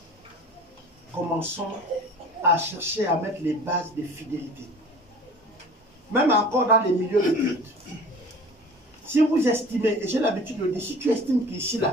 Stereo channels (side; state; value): both; normal; correlation 0.43